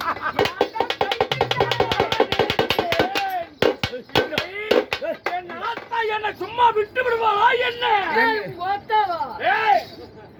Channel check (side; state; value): both; identical; correlation 1.00